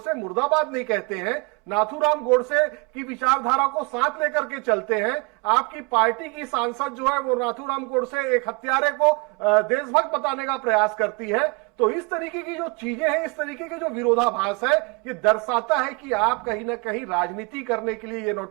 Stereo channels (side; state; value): left; quieter; 28.7 dB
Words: मुर्दाबाद नहीं कहते हैं, नाथूराम गोडसे की विचारधारा को साथ लेकर के चलते हैं। आपकी पार्टी की सांसद जो है वो नाथूराम गोडसे एक हत्यारे को देशभक्त बताने का प्रयास करती है। तो इस तरीके की जो चीजें हैं, इस तरीके के जो विरोधाभास है, ये दर्शाता है कि आप कहीं ना कहीं राजनीति करने के लिए ये